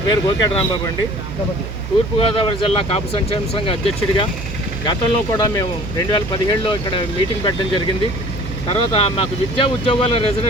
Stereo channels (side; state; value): right; noise; hum, 8 dB below the sound